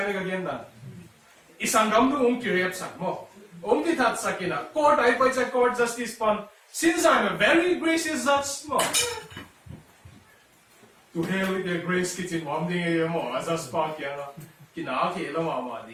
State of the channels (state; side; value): identical; both; correlation 1.00